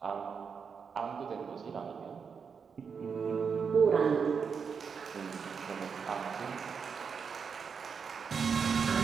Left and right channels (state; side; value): quieter; left; 6.1 dB